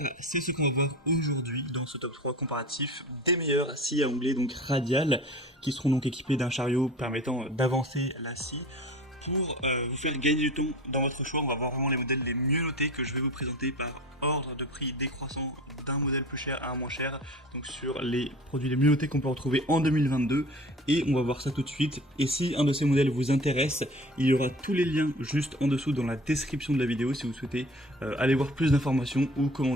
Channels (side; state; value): both; normal; correlation 0.40